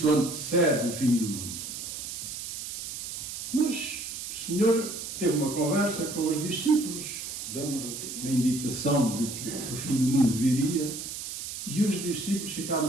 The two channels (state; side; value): noise; right; hiss, 7 dB below the sound